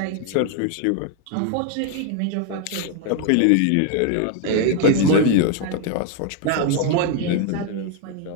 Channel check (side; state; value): both; different; correlation 0.00